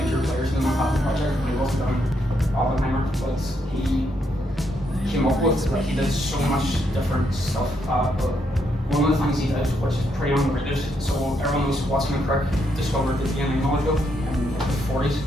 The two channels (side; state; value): both; normal; correlation 0.77